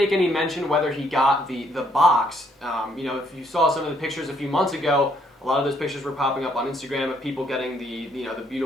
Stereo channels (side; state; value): both; normal; correlation 0.69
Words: any mention whether he got the box. If you saw some of the pictures a few months ago, a lot of those pictures were popping up on Instagram of people getting the